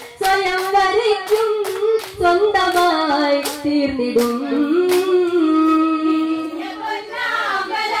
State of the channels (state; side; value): identical; both; correlation 1.00